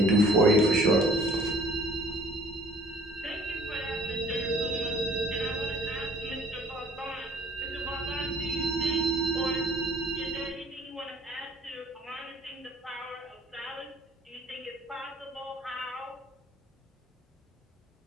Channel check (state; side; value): normal; both; correlation 0.55